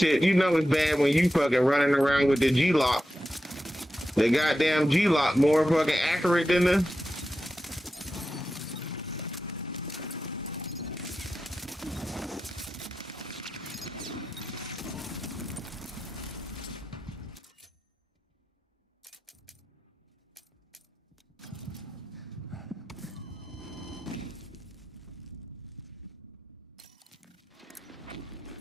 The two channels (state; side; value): normal; both; correlation 0.91